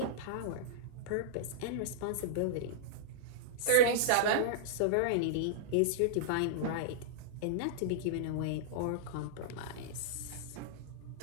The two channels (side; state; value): both; different; correlation -0.02